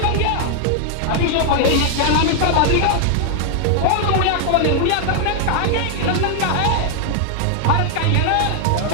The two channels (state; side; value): different; both; correlation 0.00